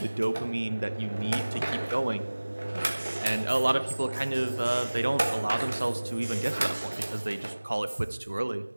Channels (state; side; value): inverted; both; correlation -1.00